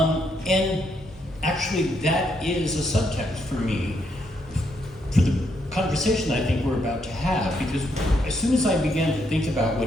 And actually, that is a subtext for me for the conversation I think we're about to have, because as soon as I began to think about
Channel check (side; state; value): both; normal; correlation 0.76